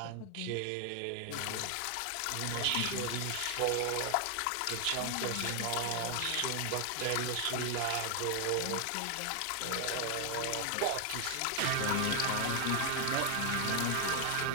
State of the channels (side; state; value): both; different; correlation 0.00